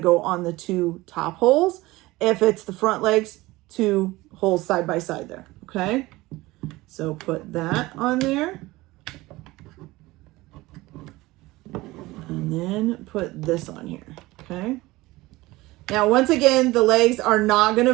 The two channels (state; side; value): quieter; left; 19.7 dB